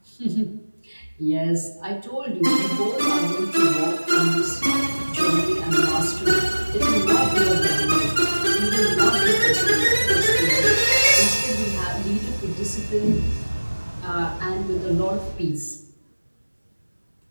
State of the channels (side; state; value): both; inverted; correlation -1.00